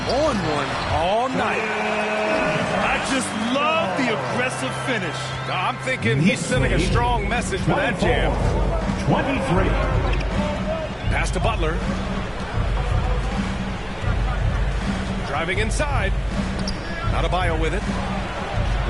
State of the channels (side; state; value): both; identical; correlation 1.00